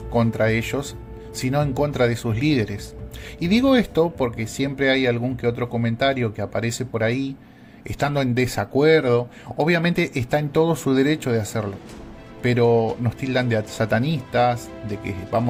contra ellos, sino en contra de sus líderes. Y digo esto porque siempre hay algún que otro comentario que aparece por ahí, estando en desacuerdo. Obviamente está en todo su derecho de hacerlo, pero nos tildan de satanistas, de que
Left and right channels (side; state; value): both; identical; correlation 1.00